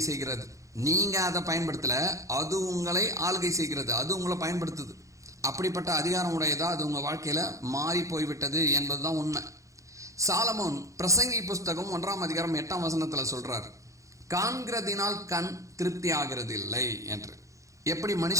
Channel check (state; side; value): late; left; 0.15 ms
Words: செய்கிறது. நீங்கள் அதை பயன்படுத்தல, அது உங்களை ஆளுகை செய்கிறது, அது உங்களை பயன்படுத்துது. அப்படிப்பட்ட அதிகாரம் உடையதா அது உங்கள் வாழ்க்கையில் மாறி போய்விட்டது என்பது தான் உண்மை. சாலமோன் பிரசங்கி புஸ்தகம் 1ஆம் அதிகாரம் 8ஆம் வசனத்தில் சொல்றார், காண்கிறதினால் கண் திருப்தி ஆகிறது இல்லை என்று. எப்படி